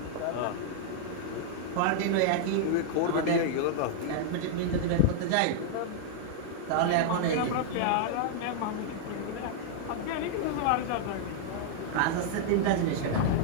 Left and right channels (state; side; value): different; both; correlation -0.01